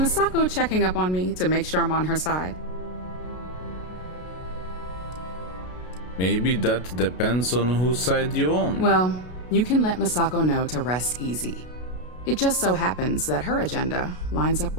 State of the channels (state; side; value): late; right; 33 ms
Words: checking up on me to make sure I'm on her side? Maybe that depends on whose side you're on. Well, you can let Masako know to rest easy. It just so happens that her agenda lines up